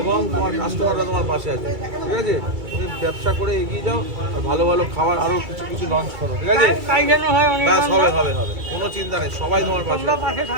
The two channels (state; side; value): late; left; 2.2 ms